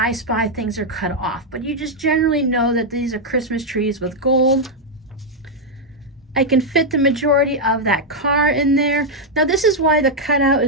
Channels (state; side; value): normal; both; correlation -0.01